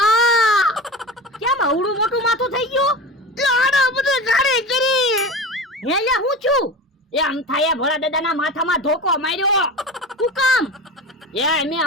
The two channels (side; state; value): both; normal; correlation 0.30